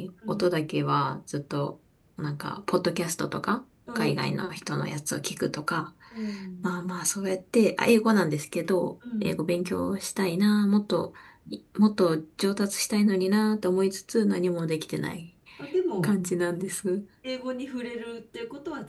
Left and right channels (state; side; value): identical; both; correlation 1.00